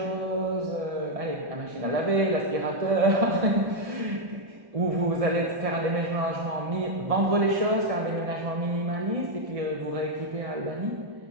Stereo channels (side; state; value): left; late; 1.6 ms